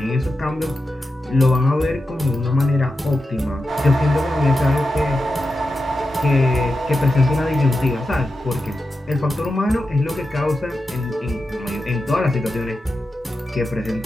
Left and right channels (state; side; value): normal; both; correlation 0.90